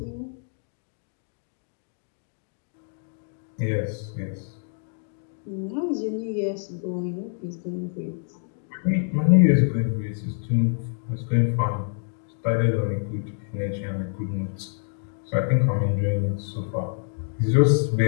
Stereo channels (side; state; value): right; silent; 61 dB below the other